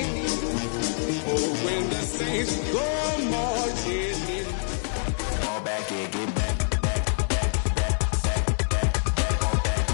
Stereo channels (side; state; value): right; silent; digital silence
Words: Oh, when the saints go marching in. Fall back and get back.